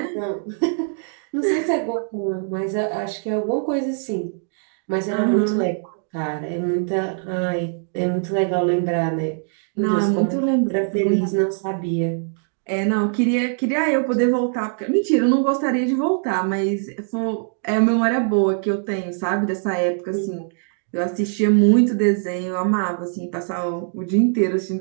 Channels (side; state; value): left; silent; 60 dB below the other